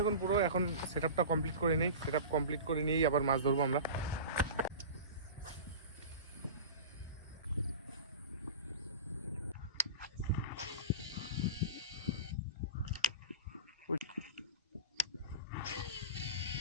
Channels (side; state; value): both; inverted; correlation -0.30